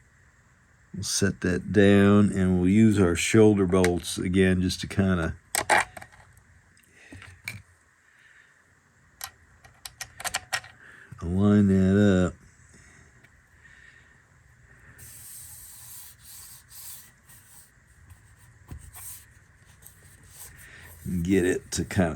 set that down, and we'll use our shoulder bolts again just to kind of align that up. Get it to kind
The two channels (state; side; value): identical; both; correlation 1.00